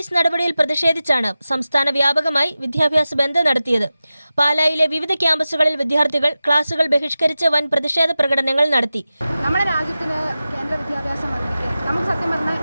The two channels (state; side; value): inverted; both; correlation -0.94